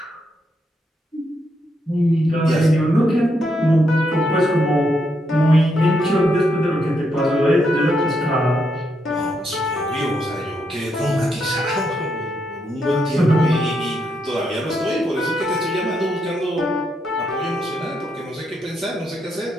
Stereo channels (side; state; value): both; normal; correlation 0.79